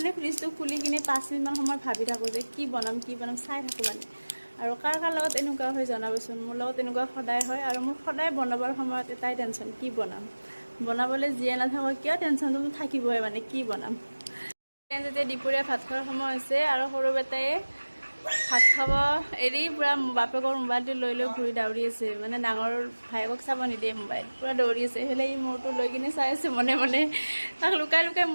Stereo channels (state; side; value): inverted; both; correlation -1.00